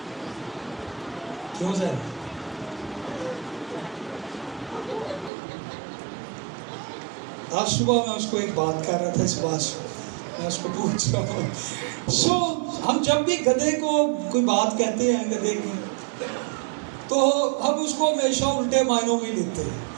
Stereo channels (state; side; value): drops out; left; at 5.3 s